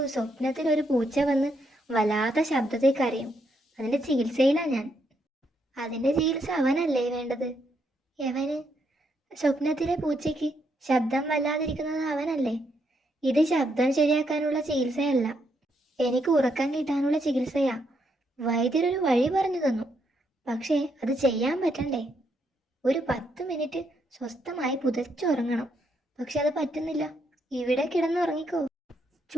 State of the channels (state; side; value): normal; both; correlation 0.77